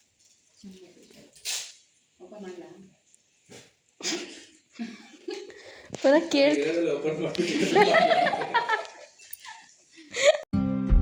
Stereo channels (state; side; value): identical; both; correlation 1.00